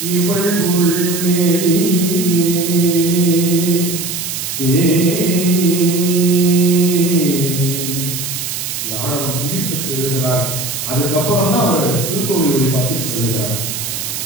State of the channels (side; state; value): right; noise; hiss, 5 dB below the sound